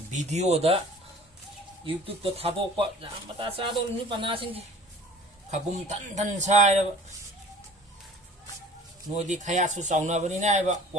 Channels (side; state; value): both; normal; correlation 0.47